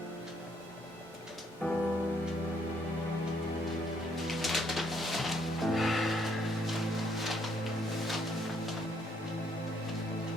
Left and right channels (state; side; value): normal; both; correlation 0.69